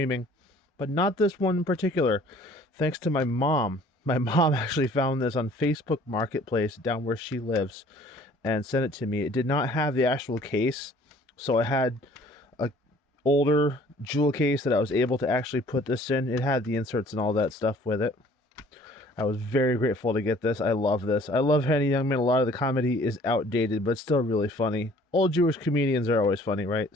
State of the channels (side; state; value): both; normal; correlation 0.54